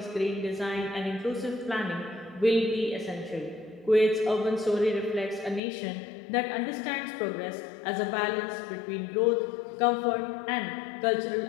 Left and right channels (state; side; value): drops out; right; at 5.6 s